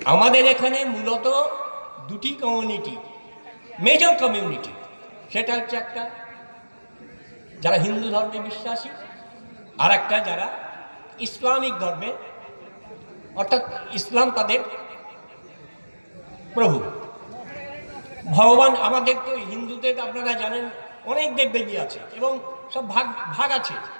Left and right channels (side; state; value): both; inverted; correlation -1.00